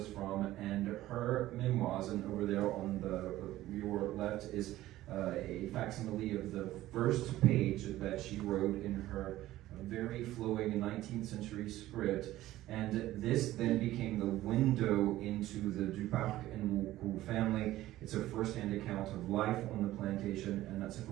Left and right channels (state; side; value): quieter; left; 15.4 dB